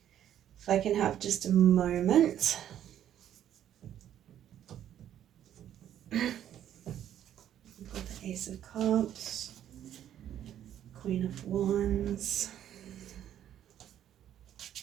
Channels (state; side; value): quieter; left; 10.8 dB